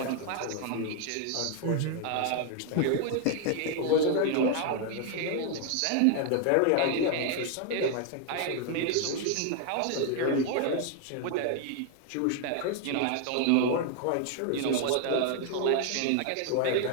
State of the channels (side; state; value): both; different; correlation 0.00